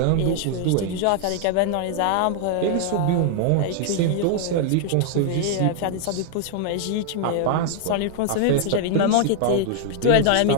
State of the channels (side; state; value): both; different; correlation 0.00